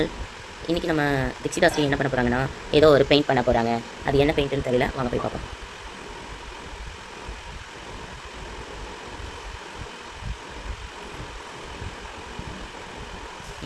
இன்றைக்கி நம்ம தீக்ஷிதாஸ்ரீ என்ன பண்ண போகிறாங்கன்னா, ஏதோ ஒரு பெயிண்ட் பண்ண போகிறாங்க. அது என்ன பெயிண்ட்டுன்னு தெரியல, வாங்க போய் பார்ப்போம்.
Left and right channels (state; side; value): identical; both; correlation 1.00